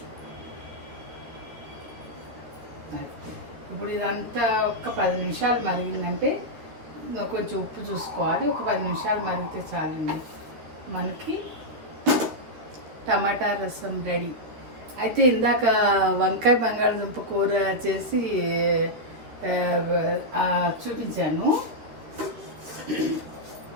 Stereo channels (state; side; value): late; left; 13 ms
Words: ఇప్పుడు ఇదంతా ఒక 10 నిమిషాలు మరిగిందంటే కొంచెం ఉప్పు చూసుకోవాలి. ఒక 10 నిమిషాలు మరిగితే చాలండి, మనకి టమాటా రసం రెడీ. అయితే ఇందాక వంకాయ బంగాళదుంప కూర చేసి చూపించాను.